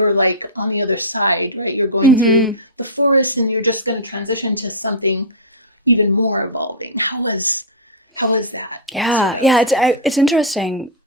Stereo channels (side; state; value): both; normal; correlation -0.12